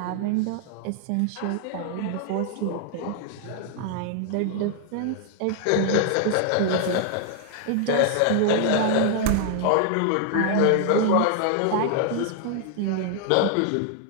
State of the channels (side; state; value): both; different; correlation 0.00